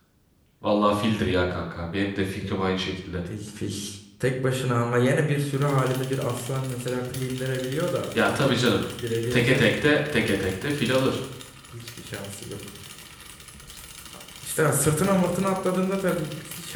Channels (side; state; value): both; identical; correlation 1.00